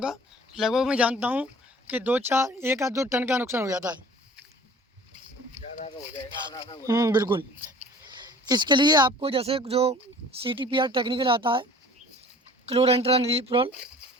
का। लगभग मैं जानता हूँ कि 1 या 2 टन का नुकसान हो जाता है। बिल्कुल। इसके लिए आपको जैसे जो CTPR टेक्निकल आता है, क्लोरेंट्रानिलीप्रोल,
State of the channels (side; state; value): both; normal; correlation 0.48